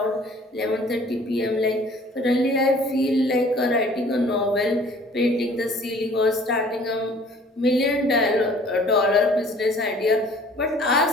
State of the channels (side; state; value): both; normal; correlation 0.52